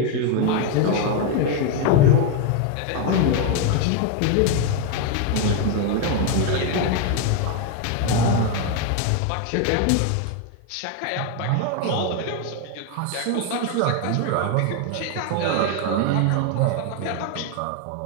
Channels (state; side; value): different; both; correlation 0.01